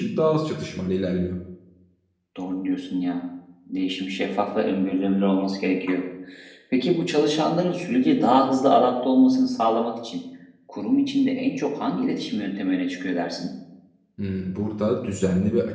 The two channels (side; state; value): both; identical; correlation 1.00